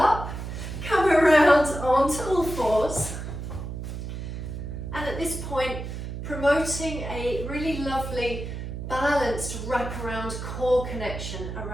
Come around onto all fours. And at this point, promoting a really lovely balanced wraparound core connection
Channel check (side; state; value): right; noise; hum, 7 dB below the sound